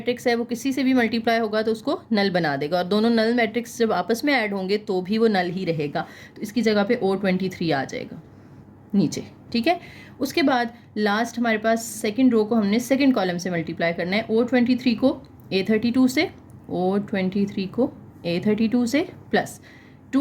है, वो किसी से भी मल्टीप्लाई होगा तो उसको नल बना देगा, और दोनों नल मैट्रिक्स जब आपस में ऐड होंगे तो भी वो नल ही रहेगा। तो इसकी जगह पे O23 आ जाएगा नीचे, ठीक है। उसके बाद लास्ट हमारे पास सेकंड रो को हमने सेकंड कॉलम से मल्टीप्लाई करना है, O23 को A32 से, O23 को A32 से, प्लस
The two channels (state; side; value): identical; both; correlation 1.00